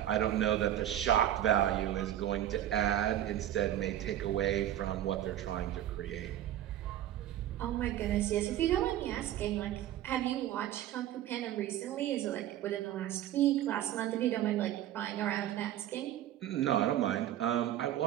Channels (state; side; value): quieter; left; 12.2 dB